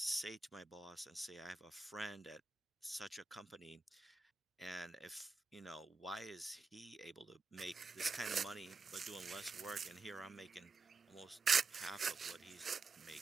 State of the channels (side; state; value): left; quieter; 4.2 dB